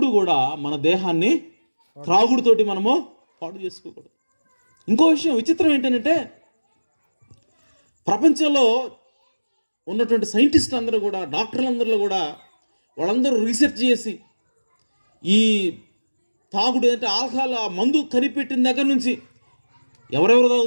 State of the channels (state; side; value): inverted; both; correlation -1.00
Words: కూడా మన దేహాన్ని త్రాగుడుతోటి మనము పాడు చేసుకోకూడదు. ఇంకో విషయం విచిత్రం ఏంటంటే, ప్రపంచంలో ఉన్నటువంటి సైంటిస్టులు అందరూ కూడా, డాక్టర్లందరూ కూడా, వాళ్ళందరూ రీసెర్చ్ చేసి ఈ తాగుడు అంటే ఆల్కహాల్, ఆ మందు కనిపెట్టిన దగ్గర నుంచి ఎవరెవరు